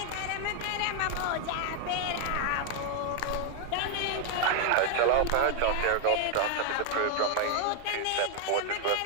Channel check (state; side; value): different; both; correlation 0.00